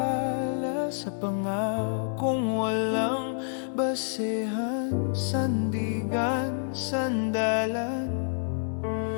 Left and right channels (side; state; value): right; silent; 59 dB below the other